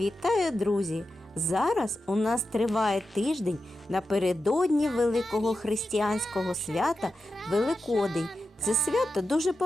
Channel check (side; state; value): both; normal; correlation 0.90